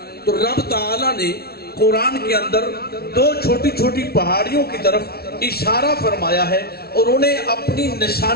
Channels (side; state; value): right; late; 0.45 ms